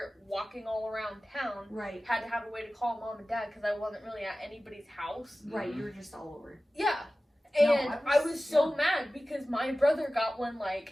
walking all around town. Right, Had to have a way to call mom and dad because I wasn't really at anybody's house. right. Mhm. You were just all over. Yeah. No, And I I was- was so yeah. mad because my brother got one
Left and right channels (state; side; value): normal; both; correlation 0.96